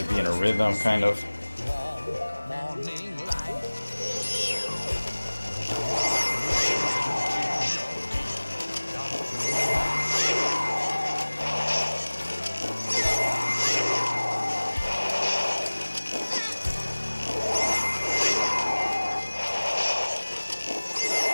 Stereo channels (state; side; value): inverted; both; correlation -1.00